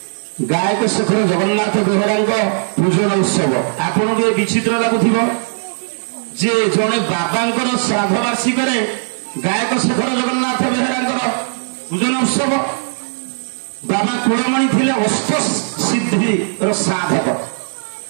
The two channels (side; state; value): left; silent; digital silence